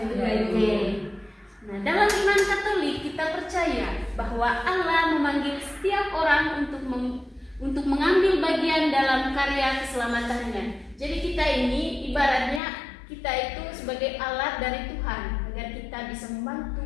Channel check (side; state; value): right; drops out; at 12.6 s